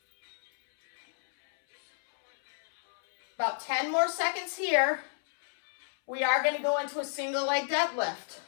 About 10 more seconds here. We are going to go into a single leg deadlift.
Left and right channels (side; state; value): right; silent; 58 dB below the other